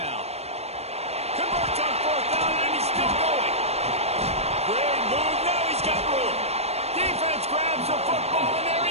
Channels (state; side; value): late; left; 0.31 ms